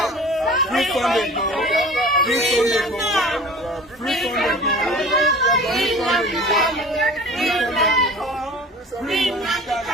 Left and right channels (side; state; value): both; normal; correlation 0.42